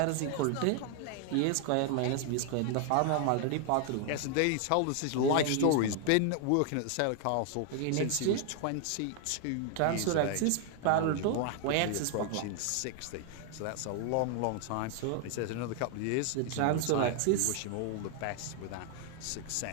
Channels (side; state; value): both; different; correlation 0.00